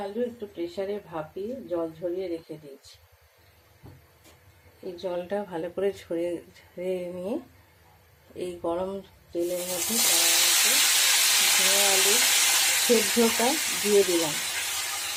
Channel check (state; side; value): identical; both; correlation 1.00